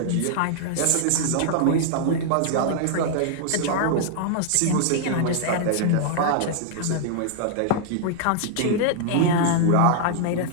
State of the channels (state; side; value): different; both; correlation -0.01